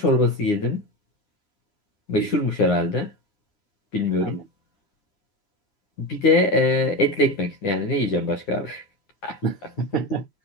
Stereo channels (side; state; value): right; late; 9.7 ms